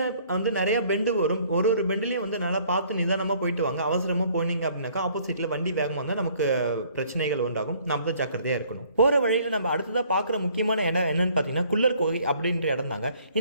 நிறைய பெண்டு வரும். ஒரு பெண்டுலையும் நல்லா பார்த்து நிதானமா போயிட்டு வாங்க. அவசரமா போனீங்க அப்படின்னாக்கா ஆப்போசிட்ல வண்டி வேகமாக வந்தால் நமக்கு பிரச்சனைகள் உண்டாகும். நம்ம தான் ஜாக்கிரதையா இருக்கணும். போற வழியில நம்ம அடுத்ததா பார்க்குற முக்கியமான இடம் என்னன்னு பார்த்தீங்கன்னா குள்ளர் கோகை அப்படின்ற இடம் தாங்க.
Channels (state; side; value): inverted; both; correlation -0.60